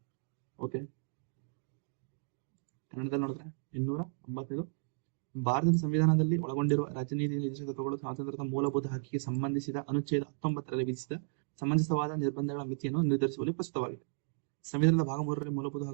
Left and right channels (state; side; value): silent; left; digital silence